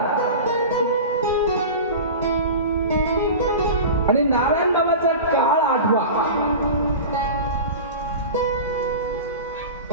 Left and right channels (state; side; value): inverted; both; correlation -0.31